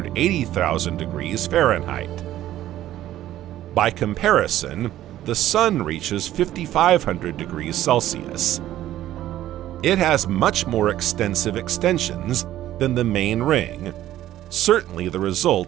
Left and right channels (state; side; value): quieter; left; 13.3 dB